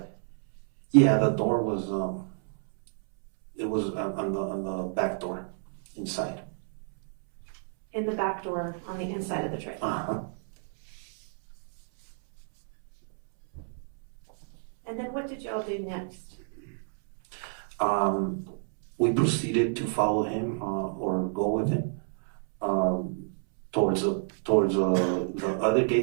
Yeah, the door was it was on the back door inside. In the back door on the inside of the trailer. Uh-huh. And then what did y'all do next? We proceeded to follow him or go with him towards the other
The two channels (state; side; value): silent; left; 59 dB below the other